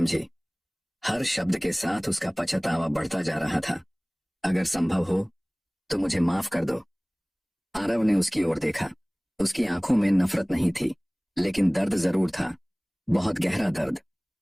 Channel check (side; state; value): both; identical; correlation 1.00